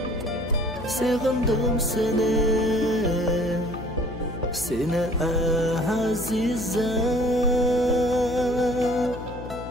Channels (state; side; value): noise; left; hum, 12 dB below the sound